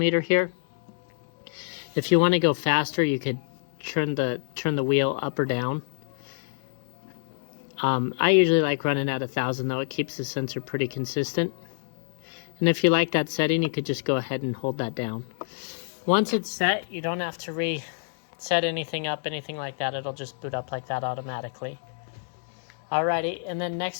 here. If you want to go faster, you could turn the wheel up or down. I usually like running at 1,000 though. It keeps the sensor pretty consistent. And if you like that setting, you could just go ahead and hold that down. Once it's set, you don't have to reset anything up, anything like that. It'll just boot up like that automatically. Alrighty, and then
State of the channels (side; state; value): right; silent; digital silence